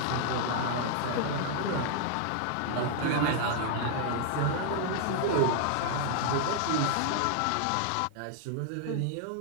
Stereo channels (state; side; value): different; both; correlation 0.00